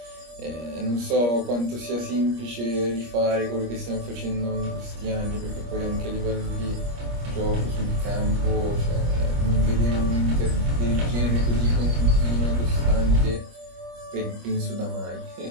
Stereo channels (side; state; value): left; late; 25 ms